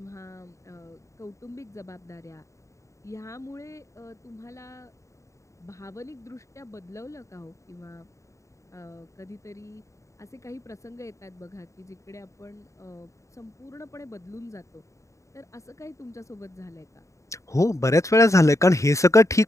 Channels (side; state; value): right; late; 0.15 ms